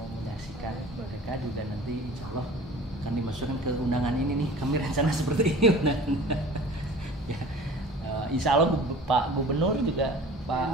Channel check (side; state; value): both; normal; correlation 0.42